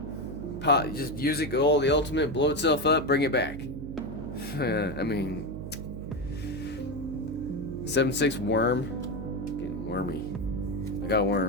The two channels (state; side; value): noise; right; hum, 9 dB below the sound